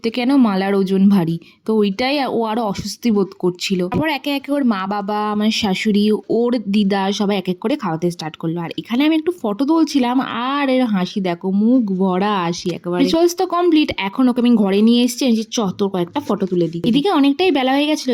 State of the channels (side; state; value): both; identical; correlation 1.00